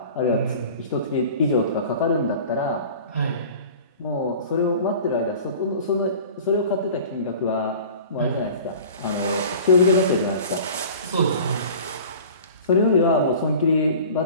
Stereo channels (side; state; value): both; inverted; correlation -0.42